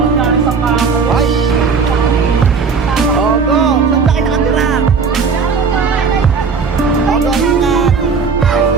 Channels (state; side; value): quieter; left; 5.3 dB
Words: na sa kamo. Ay! Oh, go! Saan ba kayo nakatira? Oh, go, ingat!